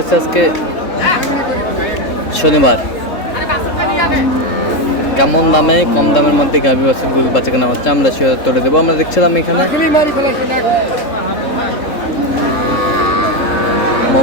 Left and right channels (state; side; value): late; right; 3.7 ms